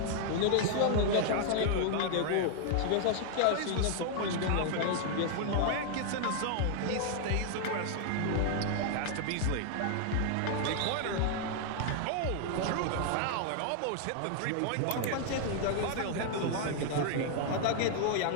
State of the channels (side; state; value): both; different; correlation 0.00